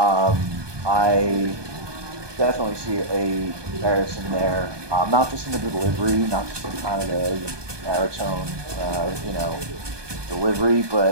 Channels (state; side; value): late; left; 1.2 ms